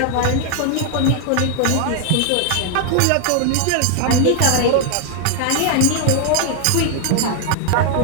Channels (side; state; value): both; different; correlation 0.00